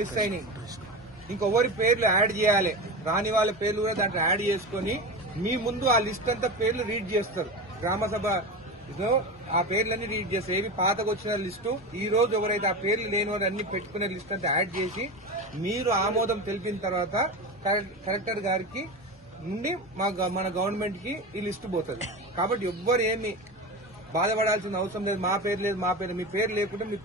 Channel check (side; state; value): both; normal; correlation 0.25